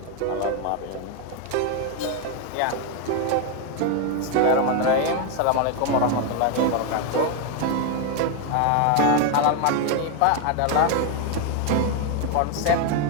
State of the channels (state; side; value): different; both; correlation 0.01